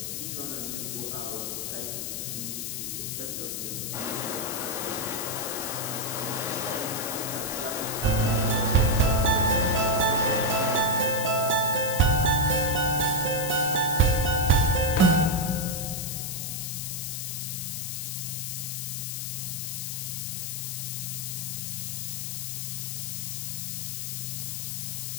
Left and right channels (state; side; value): noise; left; hiss, 4 dB below the sound